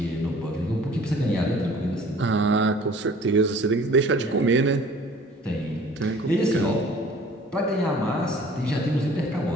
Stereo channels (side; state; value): both; normal; correlation 0.50